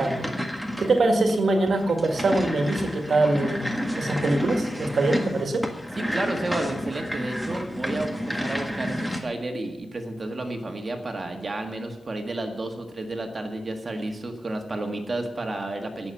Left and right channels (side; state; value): both; normal; correlation 0.92